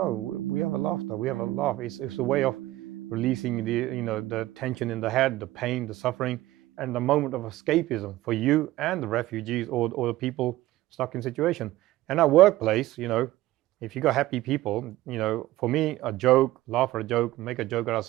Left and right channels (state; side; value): quieter; left; 16.6 dB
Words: we have a laughter, we have a laugh. It's a way of releasing the tension in the head, the pain, the suffering, and the moment of escapism for you and the refugees or the people stuck in situation. And our workplace, if you got happy people, for me, a joke, laugh at a joke, make a joke out of